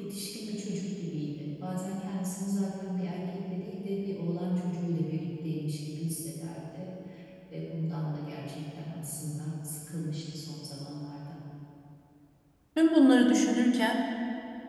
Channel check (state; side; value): identical; both; correlation 1.00